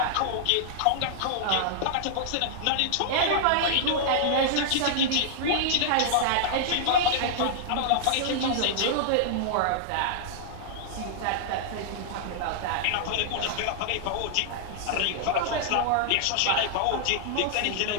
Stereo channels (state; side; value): different; both; correlation -0.01